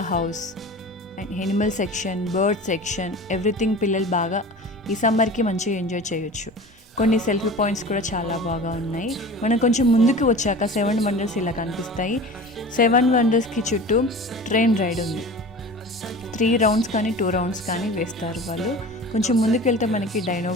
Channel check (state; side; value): normal; both; correlation 0.37